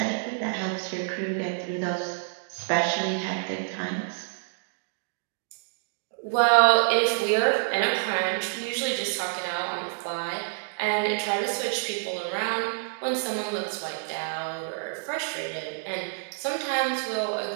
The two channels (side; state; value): left; silent; digital silence